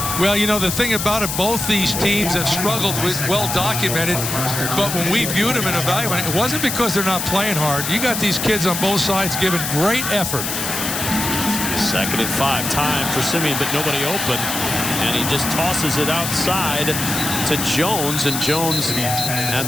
Well, the thing about it, both these teams have struggled with well documented, but when we viewed them and evaluated, it wasn't because they're not playing hard. You got these kids on both sides giving great effort. Second and 5, time for Simeon, but nobody open, and he just tosses it outside to Jones, and Jones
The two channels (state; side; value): noise; left; hiss, 3 dB below the sound